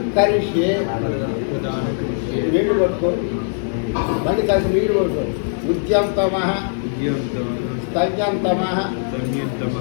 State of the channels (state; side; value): silent; right; digital silence